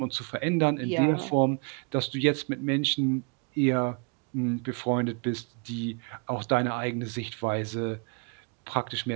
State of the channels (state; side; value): quieter; left; 34.7 dB